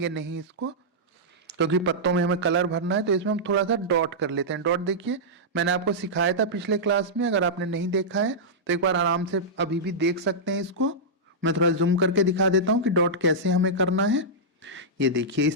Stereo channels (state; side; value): normal; both; correlation -0.11